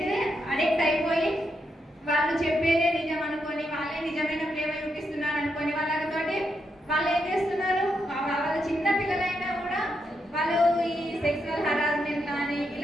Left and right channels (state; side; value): normal; both; correlation 0.82